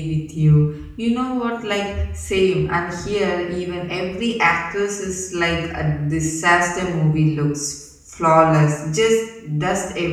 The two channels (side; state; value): both; identical; correlation 1.00